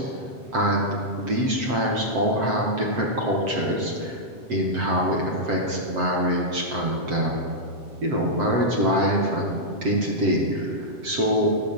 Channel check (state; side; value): late; left; 7.7 ms